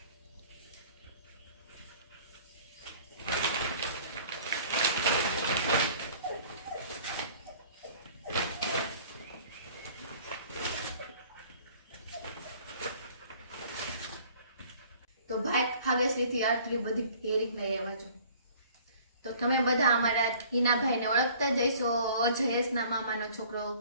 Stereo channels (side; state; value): both; inverted; correlation -0.52